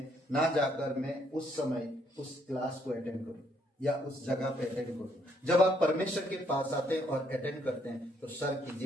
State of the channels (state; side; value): normal; both; correlation 0.70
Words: ना जाकर मैं उस समय उस क्लास को अटेंड करूं या उस जगह पे अटेंड करूं। जब आप परमेश्वर के पास आते हैं और अटेंड करते हैं तो स्वर्ग की